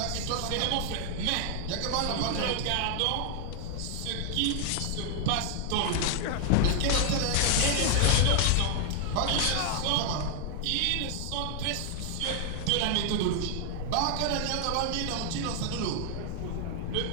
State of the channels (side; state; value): both; different; correlation 0.00